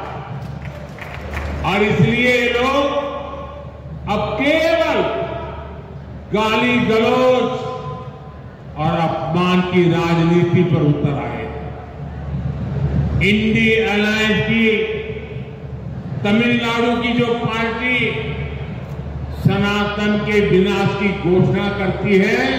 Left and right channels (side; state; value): both; identical; correlation 1.00